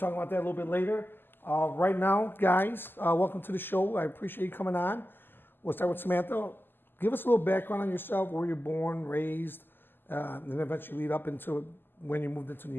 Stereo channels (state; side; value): late; right; 0.096 ms